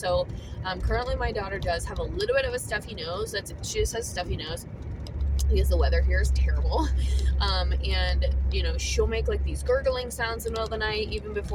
currently my daughter does have a little bit of a stuffy nose. She just has a stuffy nose because the weather here is terrible. And you know, she'll make like these gurgling sounds in the middle of the night. Even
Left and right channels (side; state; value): both; identical; correlation 1.00